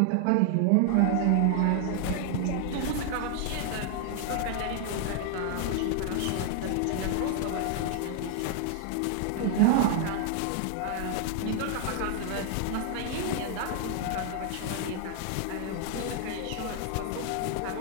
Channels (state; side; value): different; both; correlation 0.00